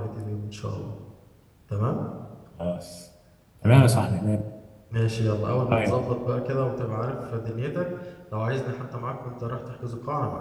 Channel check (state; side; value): identical; both; correlation 1.00